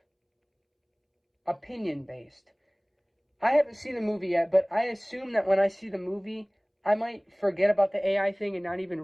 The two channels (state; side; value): identical; both; correlation 1.00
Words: opinion-based. I haven't seen the movie yet, but I assume that when I see the movie, I might forget about the AI thing and not